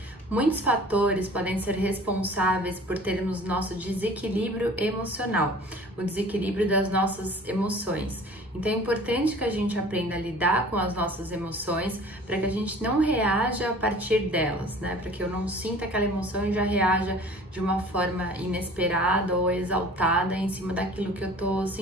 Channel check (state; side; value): normal; both; correlation 0.46